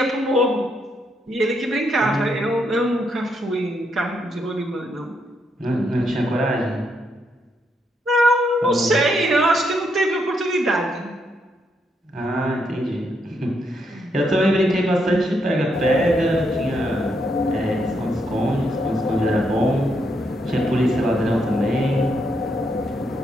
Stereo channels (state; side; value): normal; both; correlation 0.77